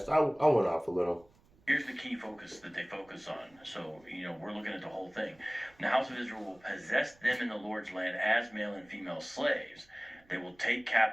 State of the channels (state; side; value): noise; right; rumble, 29 dB below the sound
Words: I went off a little. Here's the key focus that they focus on. So, we're looking at the whole thing. The house of Israel will possess them in the Lord's land as male and female slaves. They will take